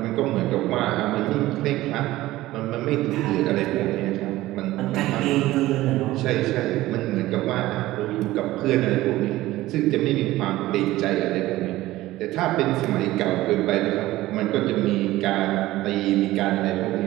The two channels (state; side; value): quieter; left; 16.8 dB